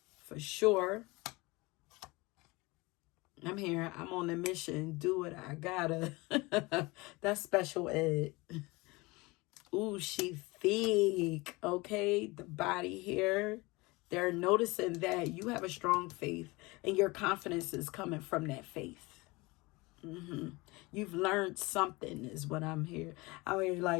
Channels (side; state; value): right; quieter; 23.7 dB